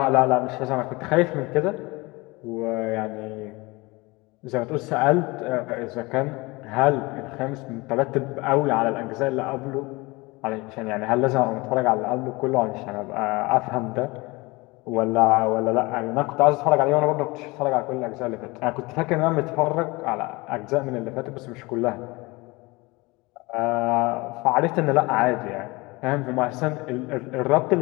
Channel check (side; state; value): right; quieter; 23.8 dB